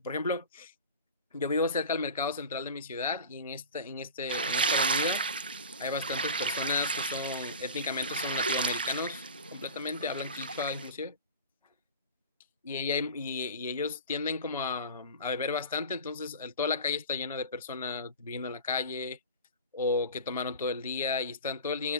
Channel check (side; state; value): both; inverted; correlation -0.34